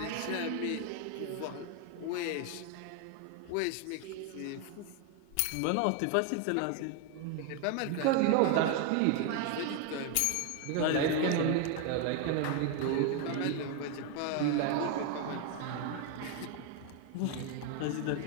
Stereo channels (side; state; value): both; different; correlation 0.01